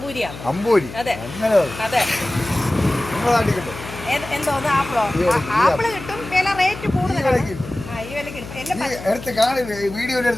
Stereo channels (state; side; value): noise; left; hum, 13 dB below the sound